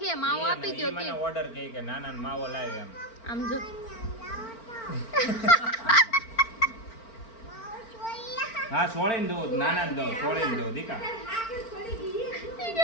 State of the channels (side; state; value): right; late; 4.4 ms